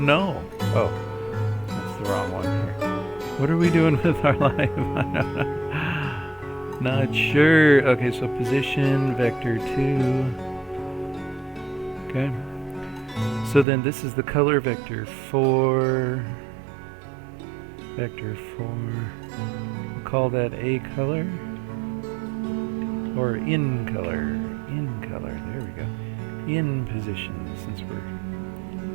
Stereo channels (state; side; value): drops out; left; at 13.7 s